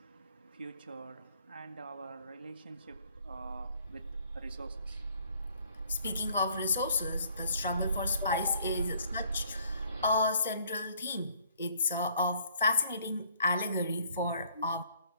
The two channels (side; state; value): both; inverted; correlation -0.62